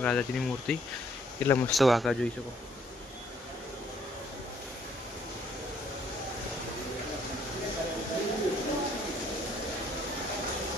રાધાજીની મૂર્તિ એટલા મસ્ત વાંકા જોઈ શકો।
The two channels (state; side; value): normal; both; correlation 0.65